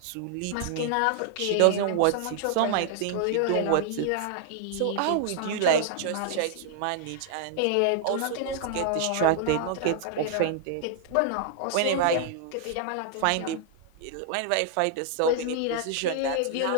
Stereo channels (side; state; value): both; different; correlation -0.01